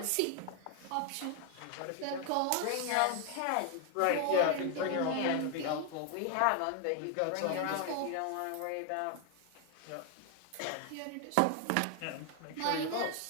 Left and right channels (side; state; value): both; different; correlation 0.00